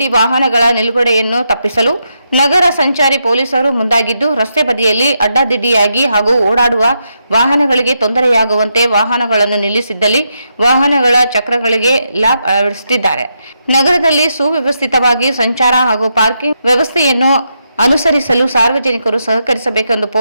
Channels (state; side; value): inverted; both; correlation -0.82